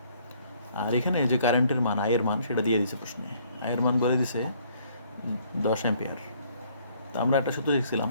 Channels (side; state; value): both; inverted; correlation -0.63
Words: আর এখানে যে কারেন্টের মান, আয়ের মান, সেটা দিয়ে দিছে প্রশ্নে, আয়ের মান বলে দিছে 10 অ্যাম্পিয়ার। তো আমরা একটা সূত্র দেখছিলাম